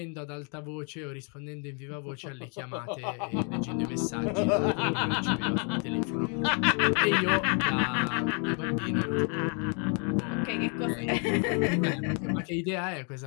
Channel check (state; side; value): quieter; right; 37.8 dB